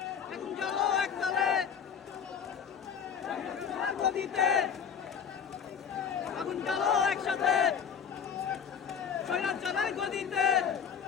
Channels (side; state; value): right; quieter; 7.3 dB